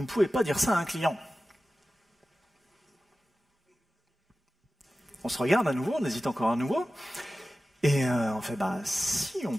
ne pouvez pas dire ça à un client ». On se regarde à nouveau, on hésite encore à nouveau. Et on fait « si on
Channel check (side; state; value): both; normal; correlation 0.95